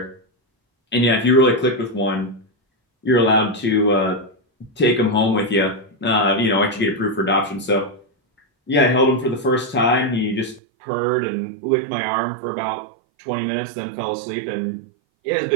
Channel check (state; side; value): drops out; left; at 10.6 s